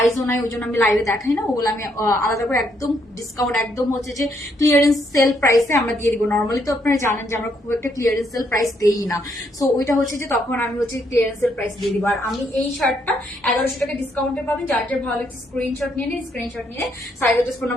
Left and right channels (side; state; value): both; normal; correlation 0.73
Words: নাই, ওই জন্য আমি লাইভে দেখাই না। ওগুলো আমি আলাদা করে একদম ডিসকাউন্ট, একদম হচ্ছে যে ক্লিয়ারেন্স সেল প্রাইসে আমরা দিয়ে দিব। নর্মালি তো আপনারা জানেন যে আমরা খুব একটা ক্লিয়ারেন্স সেল প্রাইস দেই না, সো ওইটা হচ্ছে যে তখন আমি হচ্ছে ক্লিয়ারেন্স সেল প্রাইস দিয়ে দিব। আর আমি এই শার্টটা 1100 টাকা ডিসকাউন্টে পাবেন। যার যার ভালো লাগছে স্ক্রিনশট নিয়ে নিন, স্ক্রিনশট নিয়ে size address phone